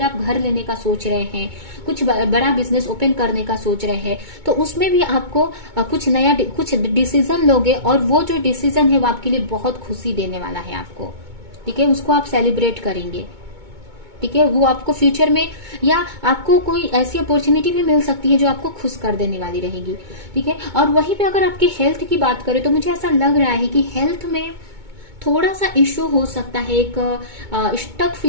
आप घर लेने का सोच रहे हैं, कुछ बड़ा बिजनेस ओपन करने का सोच रहे हैं, तो उसमें भी आपको कुछ नया कुछ डिसीजन लोगे, और वो जो डिसीजन है वो आपके लिए बहुत खुशी देने वाला है आपको। ठीक है, उसको आप सेलिब्रेट करेंगे। ठीक है, वो आपको फ्यूचर में, या आपको कोई ऐसी अपॉर्चुनिटी भी मिल सकती है जो आपको खुश कर देने वाली रहेगी। ठीक है, और वहीं पे अगर आपके हेल्थ की बात करें तो मुझे ऐसा लग रहा है कि हेल्थ में थोड़ा सा इश्यू हो सकता है, एक स्टक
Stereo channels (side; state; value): left; late; 2.2 ms